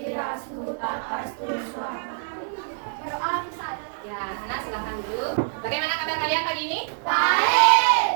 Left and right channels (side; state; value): left; silent; 58 dB below the other